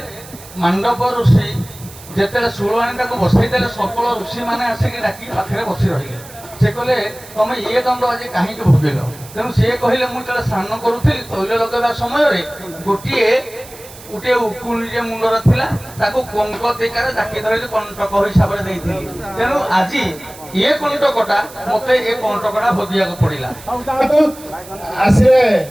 ମାଣ୍ଡବ ଋଷି ଯେତେବେଳେ ଶୂଳ ଆଣି ତାକୁ ବସେଇ ଦେଲେ ସକଳ ଋଷିମାନେ ଆସିକି ଡାକି ପାଖରେ ବସି ରହିଲେ। ସେ କହିଲେ ତମେ ଇଏ ଦଣ୍ଡ ଆଜି କାହିଁକି ଭୋଗିଲ? ତେଣୁ ସିଏ କହିଲେ ମୁଁ ଯେତେବେଳେ ସ୍ନାନ କରୁଥିଲି ତୈଳ ଲଗାଇବା ସମୟରେ ଗୋଟିଏ ଉକୁଣିଟିଏ ମୁଣ୍ଡର ଥିଲା ତାକୁ କଙ୍କ ଟେକାରେ ଡାକି ଧରିଲି କଣ୍ଟକ ହିସାବରେ ଦେଇଥିଲି। ତେଣୁ ଆଜି ଏ କଣ୍ଟକଟା ମତେ ଏ କଣ୍ଟକଟା ଭୋଗିବାକୁ ପଡ଼ିଲା। ଆସିଲେ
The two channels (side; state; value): right; noise; hiss, 18 dB below the sound